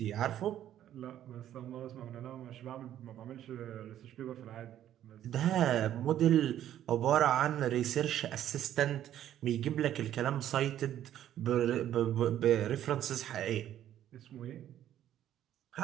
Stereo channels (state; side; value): quieter; left; 11.5 dB